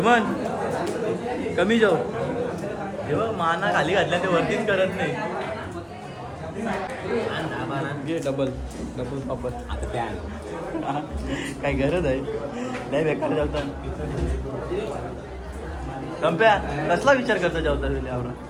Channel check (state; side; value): identical; both; correlation 1.00